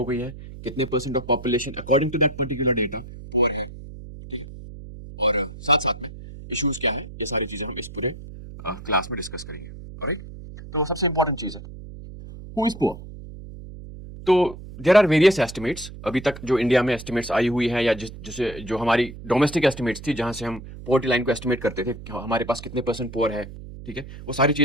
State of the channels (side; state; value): right; noise; hum, 14 dB below the sound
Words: गई है, कितने percent of population according to that particular data poor है, ठीक है? और साथ साथ में इश्यूज क्या है, ये सारी चीजें हम इस पूरे क्लास में डिस्कस करेंगे. ऑलराइट. तो सबसे इंपॉर्टेंट चीज है हु इज पुअर. तो देर आर वेरियस एस्टिमेट्स अभी तक जो इंडिया में एस्टिमेट्स आई हुई हैं, या जिसे जो हमारी डोमेस्टिक एस्टिमेट्स थी जहां से हम पोवर्टी लाइन को एस्टिमेट करते थे कि हमारे पास कितने परसेंट पुअर है. ठीक है, वो सारी